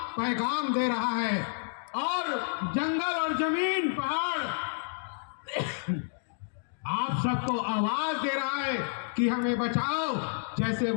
पैगाम दे रहा है। और जंगल और जमीन, पहाड़ आप सबको आवाज दे रहा है कि हमें बचाओ, जैसे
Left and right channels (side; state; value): right; silent; digital silence